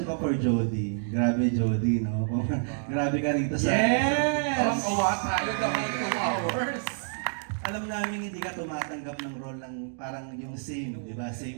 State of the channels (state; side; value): silent; left; digital silence